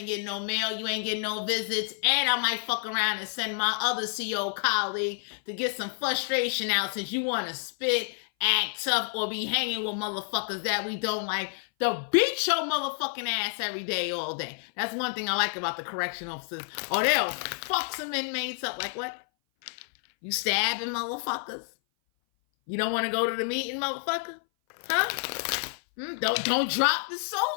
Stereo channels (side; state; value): right; silent; 57 dB below the other